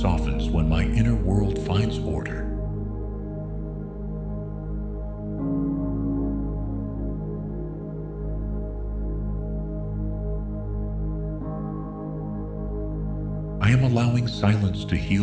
when my inner world finds order. I am allowing silence to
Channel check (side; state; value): both; identical; correlation 1.00